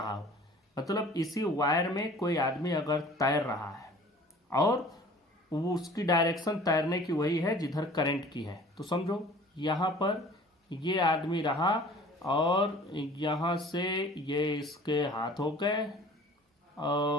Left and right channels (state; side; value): normal; both; correlation 0.47